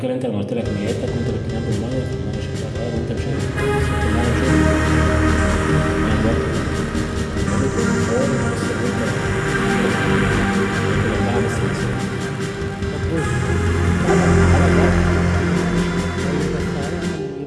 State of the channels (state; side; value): identical; both; correlation 1.00